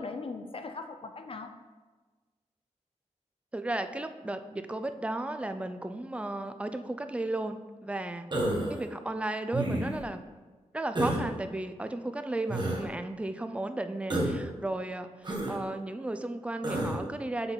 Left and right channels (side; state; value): both; normal; correlation 0.84